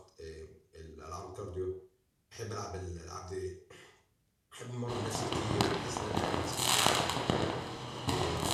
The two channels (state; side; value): identical; both; correlation 1.00